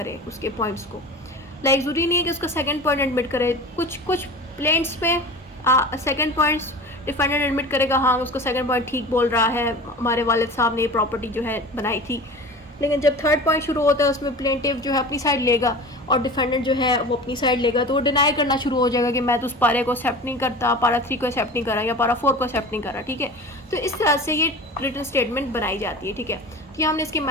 उसके पॉइंट्स को। लाइक ज़रूरी नहीं है कि उसका सेकेंड पॉइंट एडमिट करे, कुछ प्लेंट्स में सेकेंड पॉइंट्स डिफेंडेंट एडमिट करेगा, हाँ उसका सेकंड पॉइंट ठीक बोल रहा है, हमारे वालिद साहब ने ये प्रॉपर्टी जो है बनाई थी। लेकिन जब थर्ड पॉइंट शुरू होता है उसमें प्लेंटिव जो है अपनी साइड लेगा और डिफेंडेंट जो है वो अपनी साइड लेगा, तो वो डिनाई करना शुरू हो जाएगा कि मैं तो उस पारे को एक्सेप्ट नहीं करता, पारा 3 को एक्सेप्ट नहीं करा या पारा 4 को एक्सेप्ट नहीं करा, ठीक है। तो इस तरह से ये रिटन स्टेटमेंट बनाई जाती है, ठीक है। कि हमने इसके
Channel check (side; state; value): both; normal; correlation 0.35